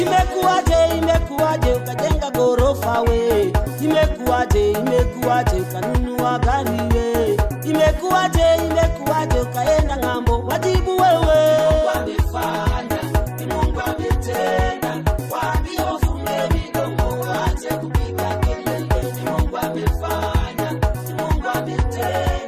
Imekuwaje ukajenga gorofa we? Imekuwaje ukanunua gari we? Imekuwaje ukaenda ng'ambo? Wajibu wewe. Mungu amefanya, ni Mungu ametenda. Waambie wafunge midomo waache kupiga kelele. Ni Mungu amefanya, ni Mungu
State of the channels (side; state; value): both; identical; correlation 1.00